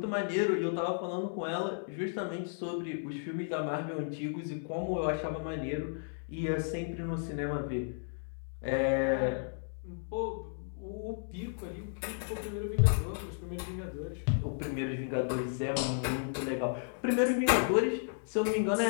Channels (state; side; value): silent; right; digital silence